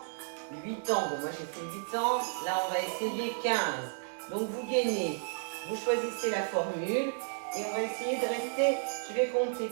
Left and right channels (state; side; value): silent; left; 56 dB below the other